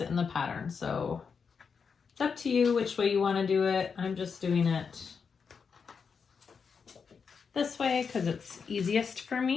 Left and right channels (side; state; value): right; quieter; 5.9 dB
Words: it in the pattern, so it's up to you which way you want to do it. I'm just doing it this way because it's easiest for